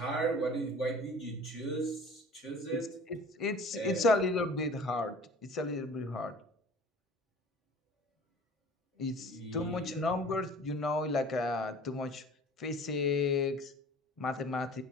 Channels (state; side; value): normal; both; correlation 0.45